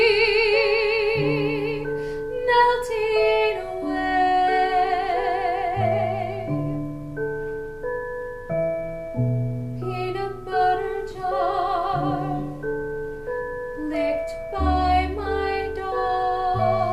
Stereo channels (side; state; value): both; identical; correlation 1.00